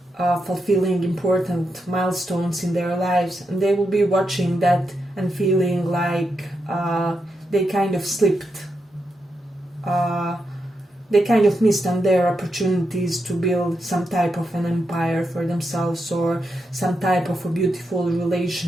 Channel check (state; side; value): normal; both; correlation 0.85